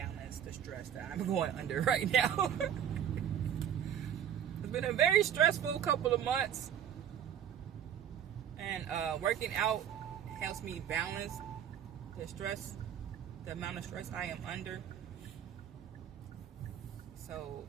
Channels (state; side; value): quieter; left; 9.4 dB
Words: the stress that I'm going under right now. It's been a very stressful couple of months, and working out helps me balance the stress, the amount of stress I am under. So